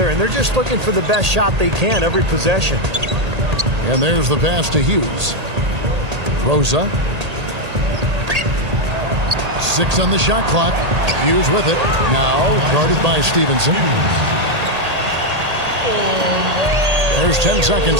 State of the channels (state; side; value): late; left; 1.8 ms